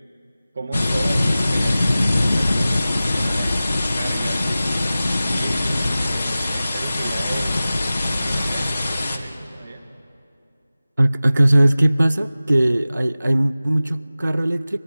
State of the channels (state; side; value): inverted; both; correlation -0.96